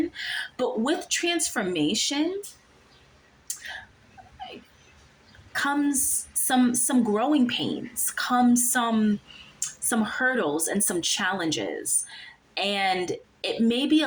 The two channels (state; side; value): identical; both; correlation 1.00